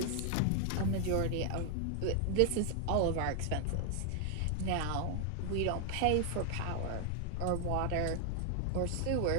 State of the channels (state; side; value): different; both; correlation 0.00